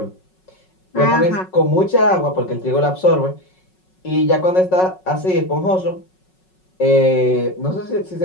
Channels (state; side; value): late; right; 5.4 ms